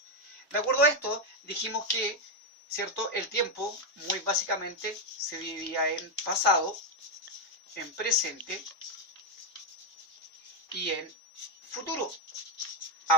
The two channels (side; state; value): both; normal; correlation 0.04